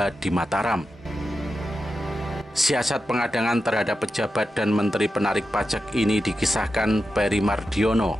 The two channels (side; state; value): both; normal; correlation 0.90